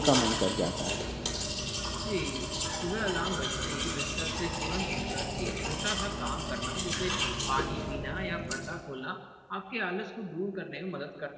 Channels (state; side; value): identical; both; correlation 1.00